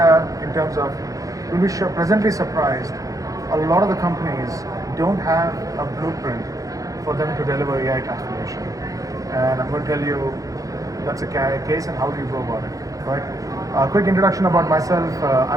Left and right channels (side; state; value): left; late; 0.17 ms